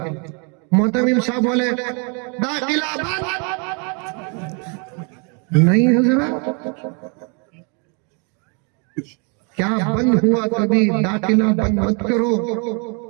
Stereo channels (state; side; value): quieter; left; 35.6 dB